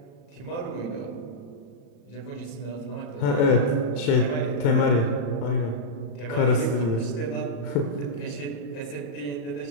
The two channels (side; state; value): right; late; 35 ms